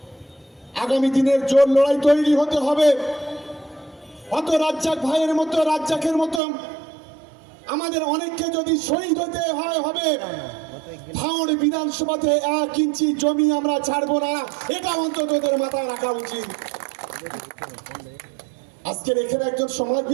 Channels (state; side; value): drops out; left; at 6.4 s